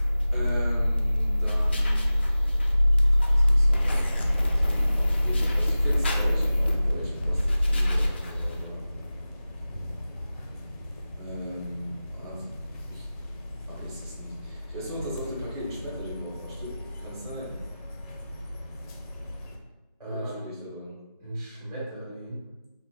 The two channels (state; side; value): inverted; both; correlation -0.96